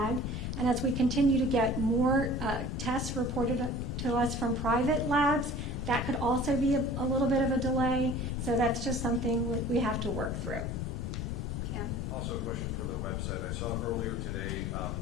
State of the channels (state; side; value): noise; left; rumble, 3 dB below the sound